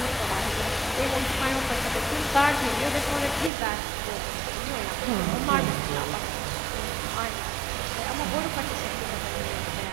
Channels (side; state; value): left; drops out; at 3.5 s